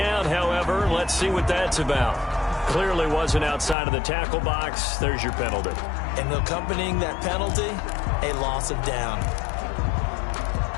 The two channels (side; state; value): right; drops out; at 3.8 s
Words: however. Let's see what that's about. Clearly wasn't outside of the tackle box. There's your penalty. And accompanying that penalty, a loss of down.